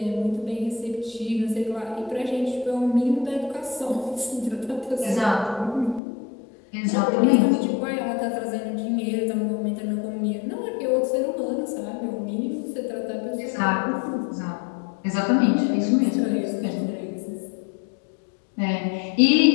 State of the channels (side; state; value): right; drops out; at 6.0 s